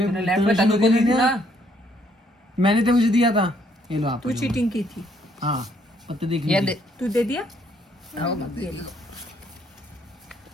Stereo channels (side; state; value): both; normal; correlation 0.68